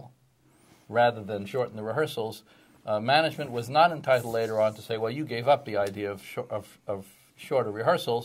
rather than shorten the rehearsals, management was not entitled later on to say, well, you gave up the idea of shorter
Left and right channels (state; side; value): identical; both; correlation 1.00